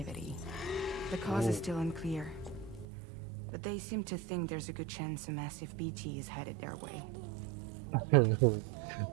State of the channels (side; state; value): left; drops out; at 2.9 s